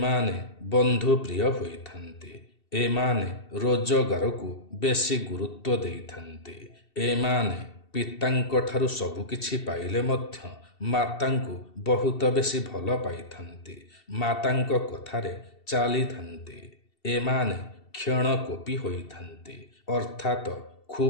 ବନ୍ଧୁପ୍ରିୟ ହୋଇଥାନ୍ତି। ଏମାନେ ରୋଜଗାରକୁ ବେଶୀ ଗୁରୁତ୍ୱ ଦେଇଥାନ୍ତି। ଏମାନେ ପିତାଙ୍କଠାରୁ ସବୁକିଛି ପାଇଲେ ମଧ୍ୟ ମାତାଙ୍କୁ ବହୁତ ବେଶୀ ଭଲ ପାଇଥାନ୍ତି। ମାତାଙ୍କ କଥାରେ ଚାଲିଥାନ୍ତି। ଏମାନେ କ୍ଷଣକୋପୀ ହୋଇଥାନ୍ତି, ଅର୍ଥାତ୍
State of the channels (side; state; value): right; late; 2.7 ms